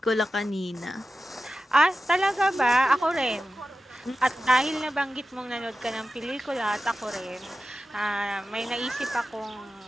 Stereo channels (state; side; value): normal; both; correlation 0.94